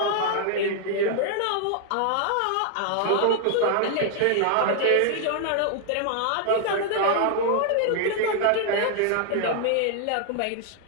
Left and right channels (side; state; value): both; different; correlation 0.00